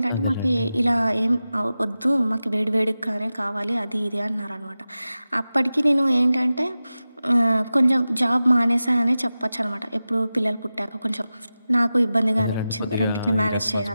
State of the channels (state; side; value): inverted; both; correlation -0.94